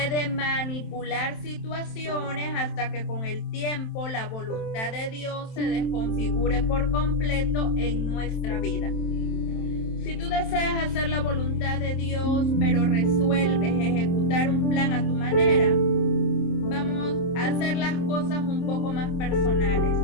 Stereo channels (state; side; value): late; right; 27 ms